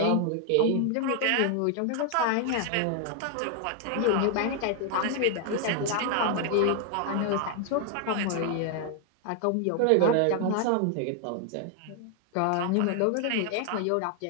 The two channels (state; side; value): different; both; correlation 0.00